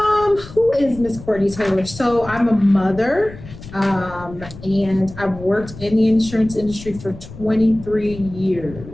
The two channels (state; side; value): noise; left; rumble, 15 dB below the sound